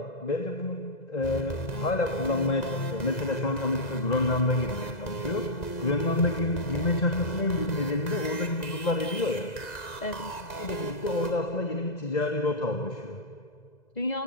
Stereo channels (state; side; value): late; right; 2.0 ms